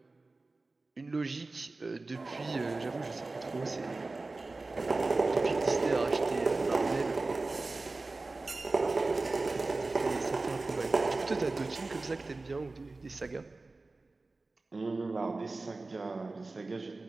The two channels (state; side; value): quieter; left; 3.4 dB